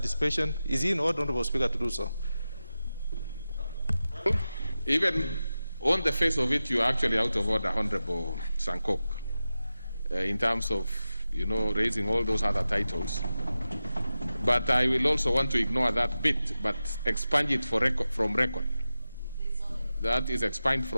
Is he in order, Honorable Speaker, to do so? Even On the face of it, you are actually out of order, Honorable Sankok, in terms of, raising all those other titles. But I will also want to ignore that bit, but expand it from record. That is expand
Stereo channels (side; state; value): both; inverted; correlation -0.93